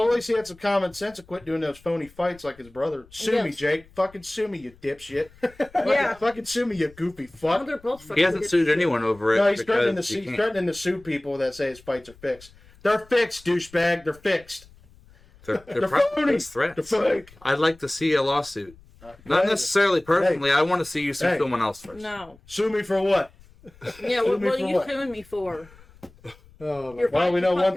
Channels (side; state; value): left; noise; rumble, 26 dB below the sound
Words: least he had some common sense and quit doing those phony fights like his brother. Sue me, Yes. Jake. Fucking sue me, you dipshit. Yeah. Fucking sue me, you goofy Oh, fuck. they're both fucking He hasn't idiots. sued anyone over it No, he's threatening to because sue. he He's can't. threatening to sue people that say his fights are fixed. They're fixed, douchebag. They're fixed. They're They're probably phony. just threats. They're fake. I'd like to see a lawsuit. Not necessarily personally. I want to see you sue Hey. someone else first. No. Sue me for what? Yeah, Sue what me are for you what? suing me for? Oh, my You're Well, we know one